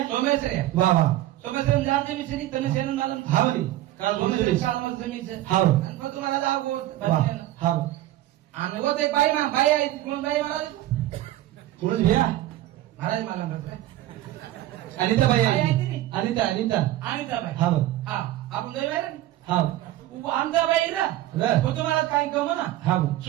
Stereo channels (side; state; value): left; quieter; 14.8 dB